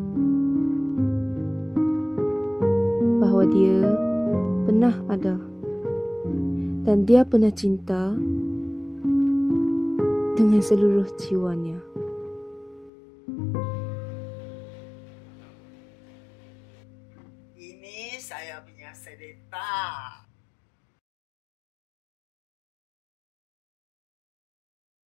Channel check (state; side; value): drops out; right; at 12.9 s